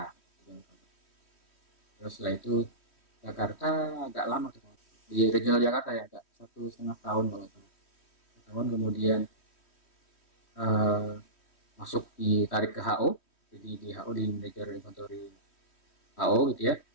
Terus setelah itu Jakarta agak lama tuh, di regional Jakarta ya, agak 1,5 tahun kalau salah. Tahun kemudian masuk ditarik ke HO, jadi di HO di manajer inventory HO gitu ya.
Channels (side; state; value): right; late; 3.1 ms